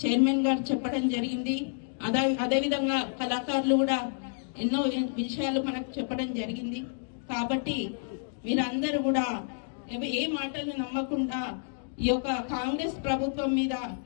చైర్మన్ గారు చెప్పడం జరిగింది. అదేవిధంగా కళాకారులు కూడా ఎన్నో విషయాలు మనకు చెప్పడం జరిగింది. కాబట్టి మీరందరూ కూడా ఏ మాటలు నమ్మకుండా ఈ యొక్క కాంగ్రెస్ ప్రభుత్వం మీద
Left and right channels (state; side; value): silent; right; digital silence